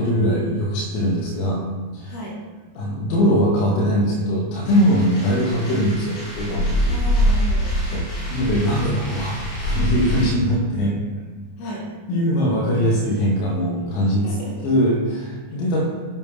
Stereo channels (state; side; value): late; right; 29 ms